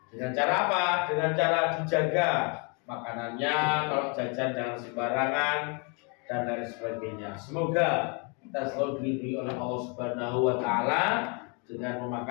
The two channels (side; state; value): right; quieter; 34.7 dB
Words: Dengan cara apa? Dengan cara dijaga makanannya, kalau jajan jangan sembarangan dan lain sebagainya. Semoga kita selalu dilindungi oleh Allah Subhanahu wa taala dengan